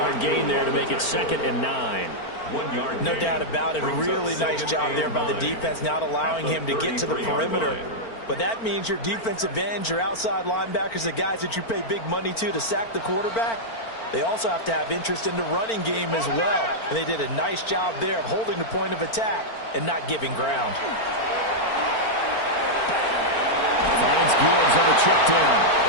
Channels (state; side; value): late; right; 4.4 ms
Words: gain there to make it 2nd and 9. No doubt about it. Really nice job there by the defense, not allowing him to get to the perimeter. But that means your defensive ends, your outside linebackers, the guys that you pay big money to sack the quarterback, they also have to have interest in the running game as well. And they did a nice job there of holding the point of attack and not giving ground. Finds Gibbs on the check